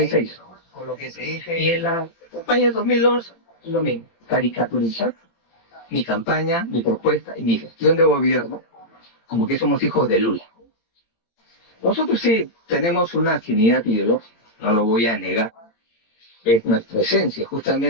con lo que se dice Y en la campaña de 2011, lo mismo, caricaturizar mi campaña, mi propuesta y mi gestión de gobierno, como que somos hijos de Lula. Nosotros sí tenemos una afinidad ideológica, no lo voy a negar, es nuestra esencia,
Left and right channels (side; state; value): right; late; 18 ms